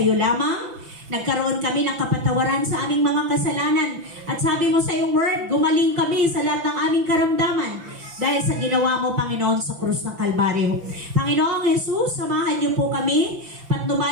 lamang. Nagkaroon kami ng kapatawaran sa aming mga kasalanan. At sabi mo sa iyong word, gumaling kami sa lahat ng aming karamdaman dahil sa ginawa mo, Panginoon, sa krus ng Kalbaryo. Panginoong Jesus, samahan niyo po kami,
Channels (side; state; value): left; late; 5.9 ms